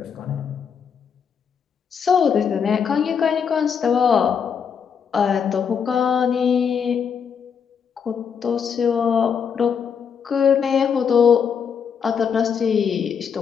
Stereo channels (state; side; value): quieter; right; 7.0 dB